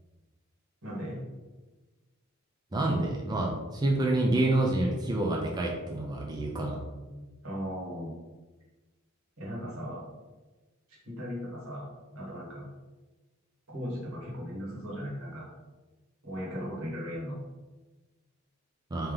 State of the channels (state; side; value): normal; both; correlation 0.72